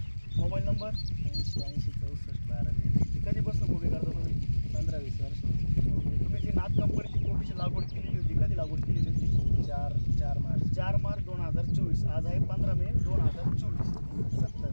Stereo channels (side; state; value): both; inverted; correlation -1.00